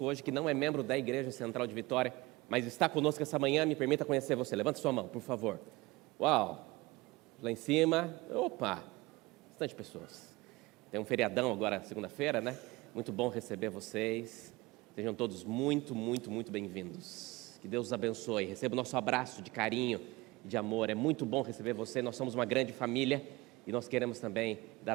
hoje que não é membro da Igreja Central de Vitória, mas está conosco essa manhã. Me permita conhecer você. Levanta sua mão, por favor. Uau! Lá em cima, opa, bastante pessoas. Tem um feriadão agora, segunda-feira, né? Muito bom receber vocês. Sejam todos muito, muito, muito bem-vindos. Que Deus os abençoe. Receba o nosso abraço de carinho e de amor. É muito bom receber você. Nós somos uma grande família e nós queremos também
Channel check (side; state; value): left; quieter; 22.0 dB